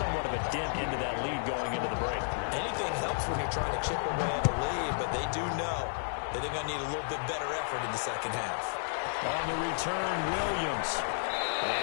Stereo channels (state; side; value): silent; right; digital silence